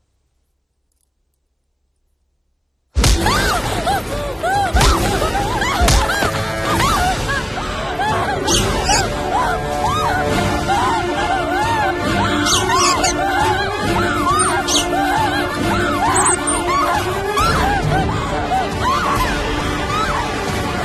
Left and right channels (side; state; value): both; identical; correlation 1.00